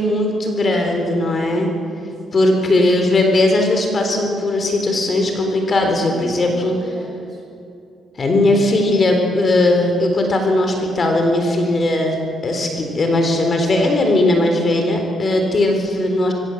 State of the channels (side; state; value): both; normal; correlation 0.77